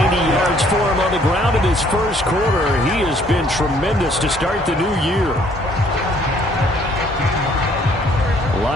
90 yards for him on the ground in his first quarter. He has been tremendous to start the new year.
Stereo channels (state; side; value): normal; both; correlation 0.62